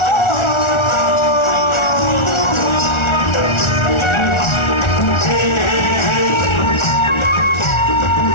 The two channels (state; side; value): late; right; 1.4 ms